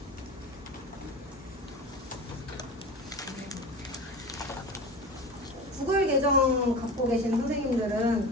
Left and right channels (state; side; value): normal; both; correlation 0.31